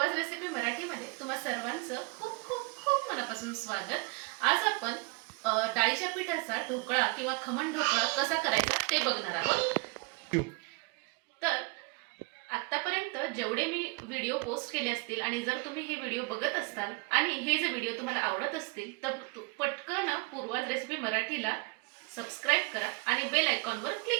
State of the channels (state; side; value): quieter; left; 27.3 dB